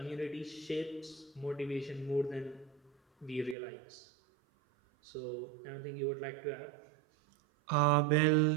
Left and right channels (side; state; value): left; drops out; at 3.6 s